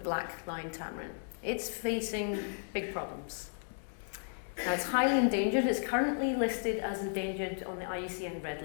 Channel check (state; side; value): silent; right; 55 dB below the other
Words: Tamarin. It's facing big problems. Now, it's highly endangered. It's currently listed as endangered on the IUCN Red